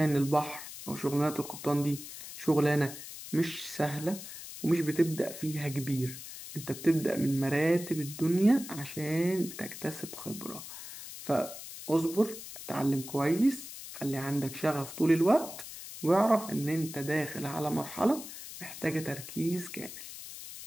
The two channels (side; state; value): left; noise; hiss, 12 dB below the sound